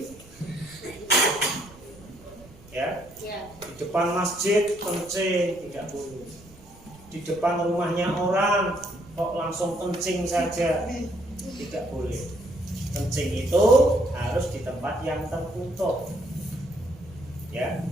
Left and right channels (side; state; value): right; noise; rumble, 22 dB below the sound